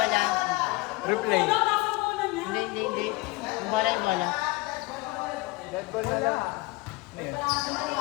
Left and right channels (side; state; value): right; quieter; 22.6 dB